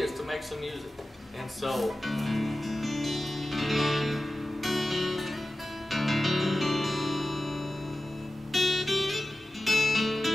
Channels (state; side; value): normal; both; correlation 0.94